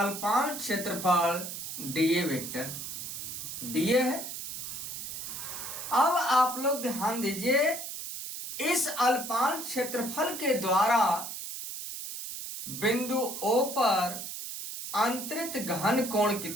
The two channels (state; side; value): noise; right; hiss, 7 dB below the sound